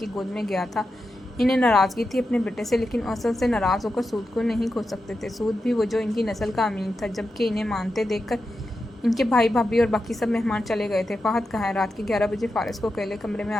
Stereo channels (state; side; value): normal; both; correlation 0.89